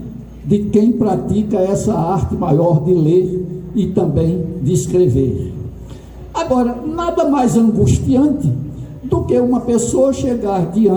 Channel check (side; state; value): both; identical; correlation 1.00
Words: de quem pratica essa arte maior de ler e também de escrever. Agora, nada mais angustiante do que uma pessoa chegar